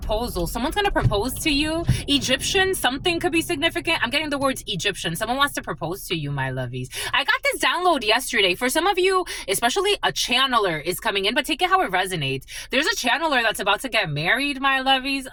Someone's gonna propose to you. Egyptian, something could be significant. I'm getting the words Egyptian. Someone wants to propose to you, my lovies. I got this download yesterday. For some of you, especially a channeler is coming in, but take it how it resonates. There's a channeler that's about to get married, my lovies.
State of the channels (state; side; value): identical; both; correlation 1.00